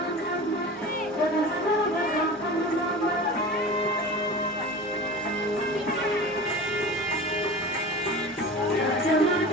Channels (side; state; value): both; normal; correlation 0.34